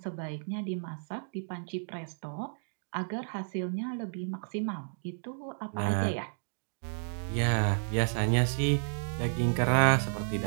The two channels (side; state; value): left; silent; digital silence